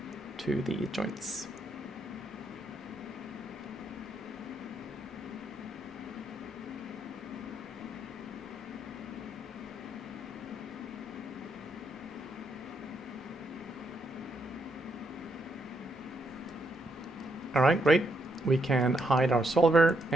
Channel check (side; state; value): both; normal; correlation 0.77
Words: to the joints. All right, great. We can hide our solver,